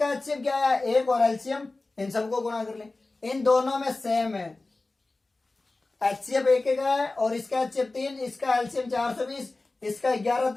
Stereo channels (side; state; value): right; quieter; 3.3 dB